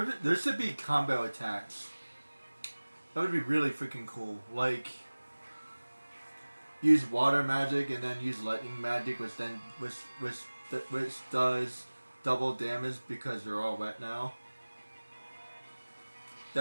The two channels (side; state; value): both; inverted; correlation -1.00